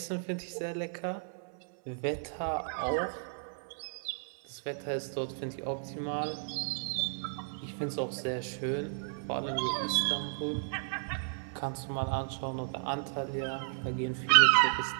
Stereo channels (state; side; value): silent; left; digital silence